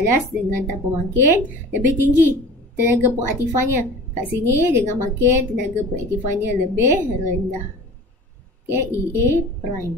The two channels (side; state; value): both; normal; correlation 0.40